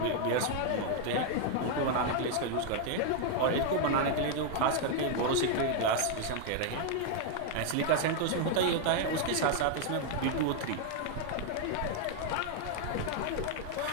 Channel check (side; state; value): both; different; correlation 0.00